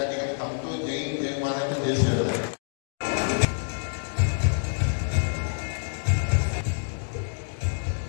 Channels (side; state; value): right; silent; digital silence